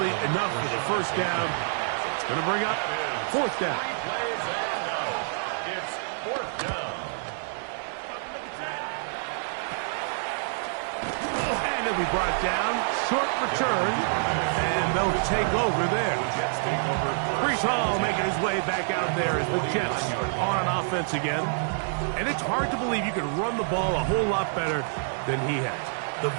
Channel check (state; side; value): silent; left; digital silence